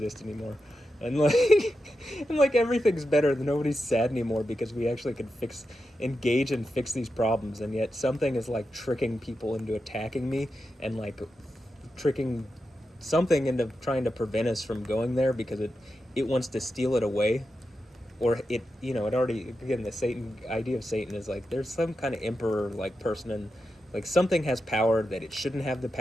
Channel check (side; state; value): both; normal; correlation 0.89